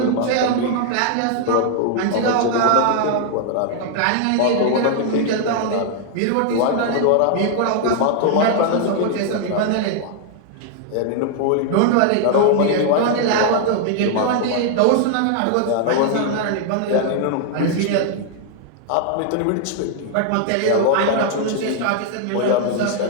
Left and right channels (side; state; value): both; different; correlation 0.00